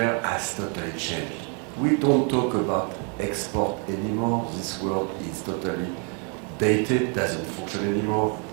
has totally changed. We don't talk about export anymore. This world is totally dated, doesn't function anymore.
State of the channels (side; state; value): left; quieter; 39.1 dB